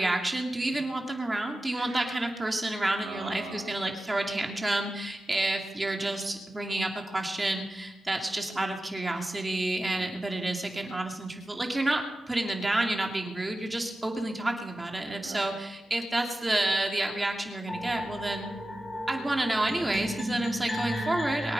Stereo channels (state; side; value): normal; both; correlation 0.94